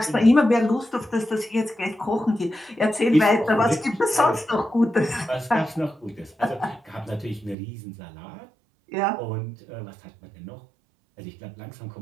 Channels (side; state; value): left; drops out; at 7.6 s